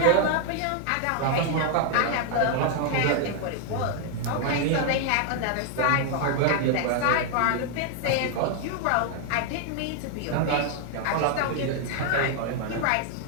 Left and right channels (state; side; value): different; both; correlation 0.00